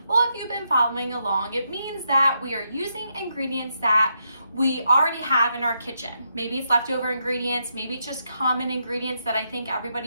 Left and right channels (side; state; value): both; inverted; correlation -0.81